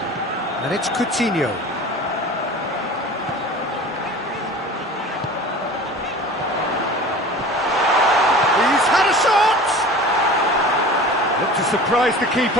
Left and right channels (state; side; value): normal; both; correlation 0.39